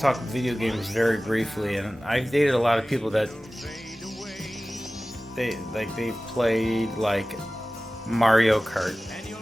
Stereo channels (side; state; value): both; normal; correlation 0.97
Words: video games very briefly, and I've dated a lot of people that they played like Mario Kart